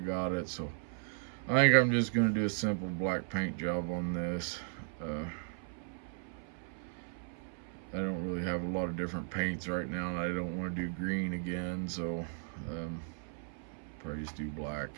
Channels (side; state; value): left; silent; 54 dB below the other